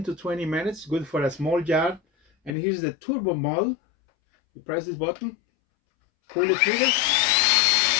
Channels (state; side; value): drops out; right; at 2.6 s